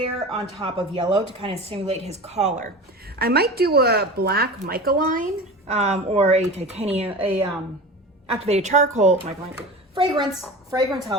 on top of yellow to kind of simulate his collar. I might do a black mica line or a titanium, activated charcoal mica line. Fragrance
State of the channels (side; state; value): both; normal; correlation 0.32